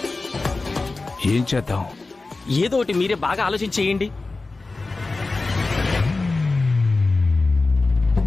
ఏం చేద్దాం? ఏదో ఒకటి మీరే బాగా ఆలోచించేయండి.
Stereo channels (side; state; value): right; quieter; 3.5 dB